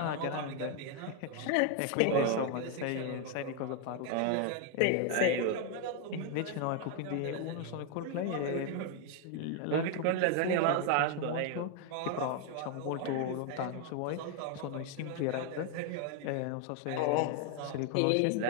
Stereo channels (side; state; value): both; different; correlation 0.01